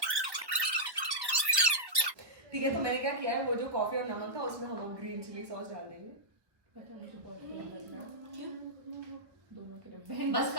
ठीक है, तो मैंने क्या किया है, वो जो कॉफी और नमक था उसमें हम ग्रीन चिली सॉस डाल देंगे। पता है, मुझे बहुत बुरा लग रहा है। क्यों? दोनों के लिए बहन बस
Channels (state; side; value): late; left; 1.1 ms